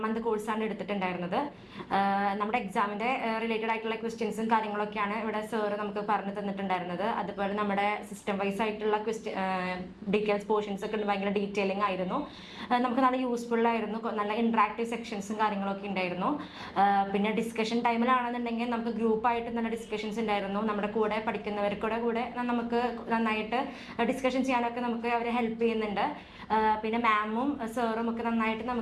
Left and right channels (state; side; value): identical; both; correlation 1.00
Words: മന്ത് കോഴ്സാണ് എടുത്തിട്ടുണ്ടായിരുന്നത്. നമ്മുടെ എക്സാമിൻ്റെ റിലേറ്റഡ് ആയിട്ടുള്ള ക്വസ്റ്റ്യൻസും കാര്യങ്ങളൊക്കെയാണ് ഇവിടെ സാറ് നമുക്ക് പറഞ്ഞു തന്നിട്ടുണ്ടായിരുന്നത്. അതുപോലെ നമ്മുടെ സിസ്റ്റം വൈസ് ആയിട്ടുള്ള ഡീറ്റെയിൽസ് പോർഷൻസ് ഒക്കെ ഭയങ്കര ഡീറ്റെയിലിംഗ് ആയിരുന്നു. നമുക്ക് നല്ല യൂസ്ഫുൾ ആയിരുന്നു. നല്ല ഇൻട്രാക്റ്റീവ് സെക്ഷൻസും കാര്യങ്ങളൊക്കെ ഉണ്ടായിരുന്നു. പിന്നെ ഡിസ്കഷൻ ടൈമിലാണെന്നുണ്ടെങ്കിൽ നമുക്ക് ഗ്രൂപ്പായിട്ട് നല്ല ഡിസ്കഷൻസ് ഉണ്ടായിരുന്നു. നമ്മുടെ കൂടെ പഠിക്കുന്നവർക്കൂടെ കൂടെ നമുക്ക് നന്നായിട്ട് ഡിസ്കഷൻ ചെയ്യാനൊക്കെ നമുക്ക് അവരെ ഹെൽപ്പ് ചെയ്യുന്നുണ്ട്. പിന്നെ മാമും സാറും ഒക്കെ നന്നായിട്ട്